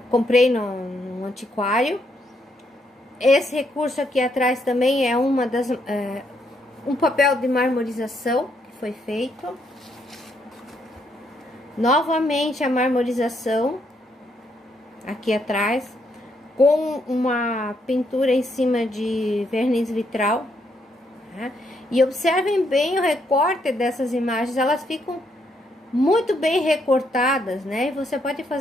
comprei no antiquário. Esse recurso aqui atrás também é um papel de marmorização que foi feito. Novamente a marmorização aqui atrás, com uma pintura em cima de verniz vitral, né? E observem bem o recorte dessas imagens, elas ficam muito bem recortadas, né? E você pode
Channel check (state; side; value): normal; both; correlation 0.75